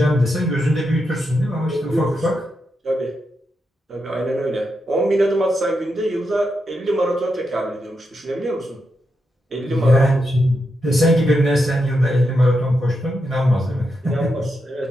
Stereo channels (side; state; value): both; normal; correlation 0.85